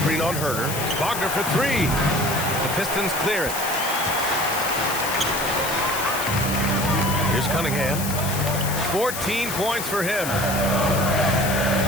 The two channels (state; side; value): noise; left; hiss, 6 dB below the sound